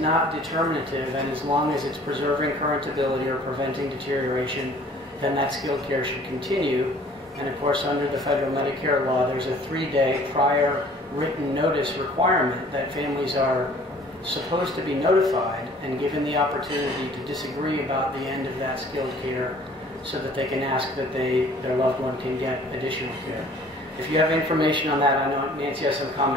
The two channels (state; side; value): normal; both; correlation 0.53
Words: determinative, and as long as it's preserving current ability or preventing deterioration, then that skilled care should continue. And of course, under the federal Medicare law, there's a 3-day prior written notice requirement that families are supposed to be notified and given the opportunity to disagree about the end of that skilled care so that they can ask that their loved one can get additional care. If you have information on that, I know Nancy has some